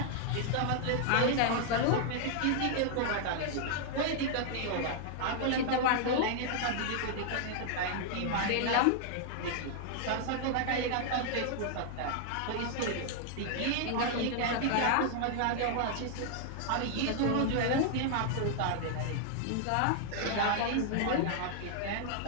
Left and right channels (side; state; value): both; different; correlation 0.00